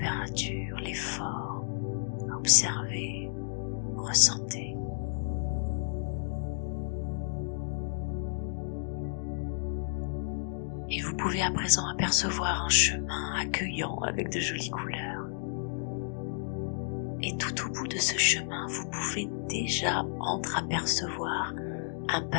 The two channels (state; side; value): silent; right; digital silence